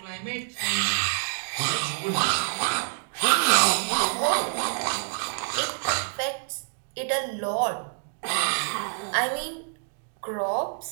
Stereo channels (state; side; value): silent; left; digital silence